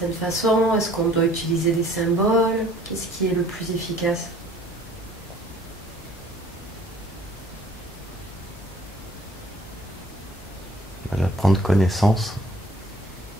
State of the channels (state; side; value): normal; both; correlation 0.55